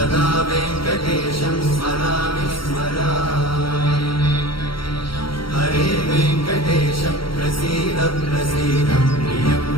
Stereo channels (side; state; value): right; late; 0.74 ms